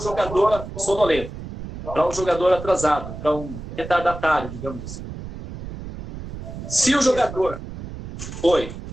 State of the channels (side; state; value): right; noise; rumble, 10 dB below the sound